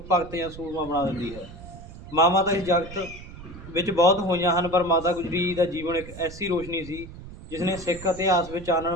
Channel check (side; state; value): right; noise; rumble, 15 dB below the sound